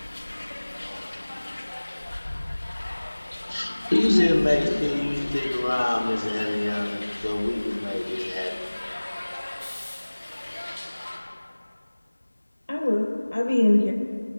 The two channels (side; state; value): both; inverted; correlation -1.00